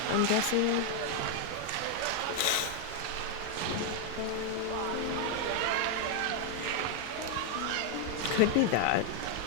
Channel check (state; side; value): different; both; correlation 0.01